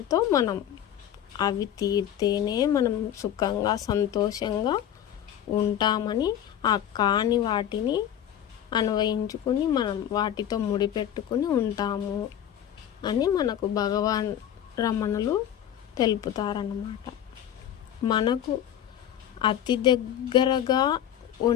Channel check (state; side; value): quieter; right; 10.5 dB